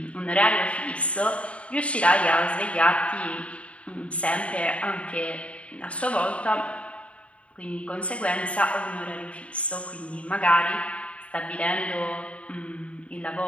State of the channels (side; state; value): right; late; 0.063 ms